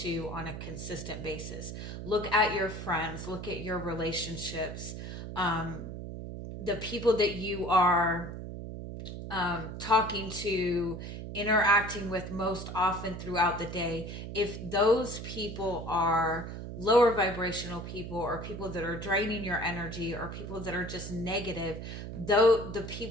to on a consistent basis. Look at your friends, look at your relationships, the people that you are talking to, interacting with most often throughout the day. If those people are lower vibrational people, or people that are draining your energy, or people that are just negative, though the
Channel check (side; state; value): right; noise; hum, 8 dB below the sound